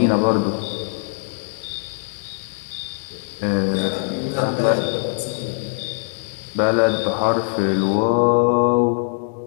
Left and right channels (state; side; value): silent; right; digital silence